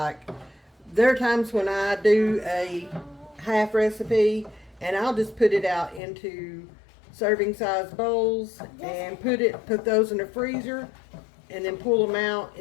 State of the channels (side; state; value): right; drops out; at 6.0 s